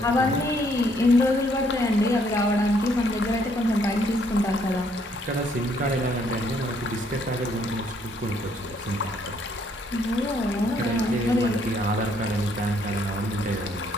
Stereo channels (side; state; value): both; normal; correlation 0.68